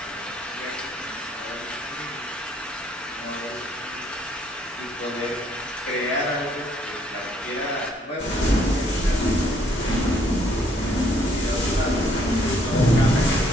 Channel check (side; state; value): both; normal; correlation 0.66